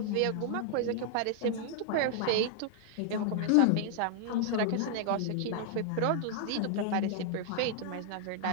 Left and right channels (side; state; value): both; different; correlation 0.00